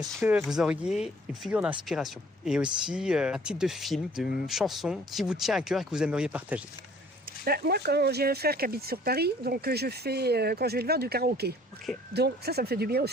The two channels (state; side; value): normal; both; correlation 0.55